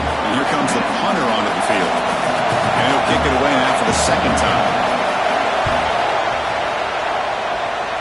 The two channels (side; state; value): both; identical; correlation 1.00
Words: here comes the punter onto the field. And he'll kick it away now for the 2nd time.